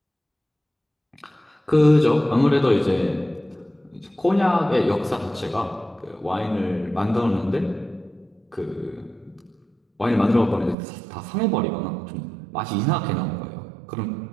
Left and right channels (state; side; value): drops out; left; at 10.8 s